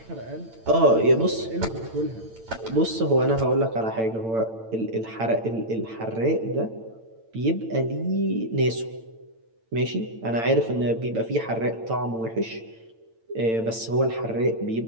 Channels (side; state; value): left; late; 8.9 ms